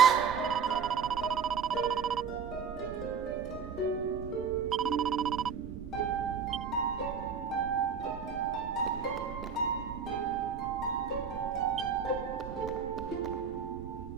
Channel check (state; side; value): quieter; left; 6.4 dB